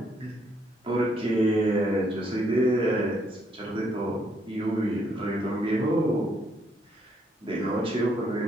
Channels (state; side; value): normal; both; correlation 0.71